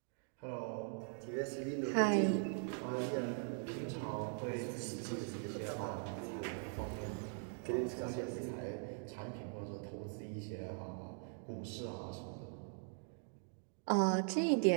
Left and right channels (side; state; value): left; silent; 50 dB below the other